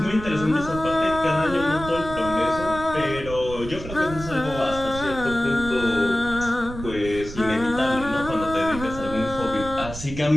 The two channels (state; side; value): noise; right; rumble, 11 dB below the sound